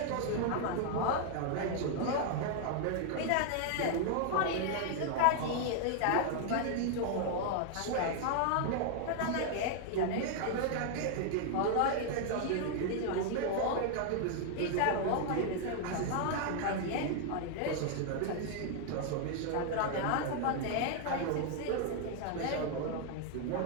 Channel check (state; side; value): different; both; correlation 0.00